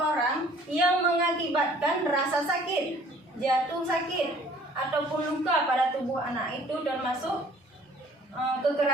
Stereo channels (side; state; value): both; normal; correlation 0.55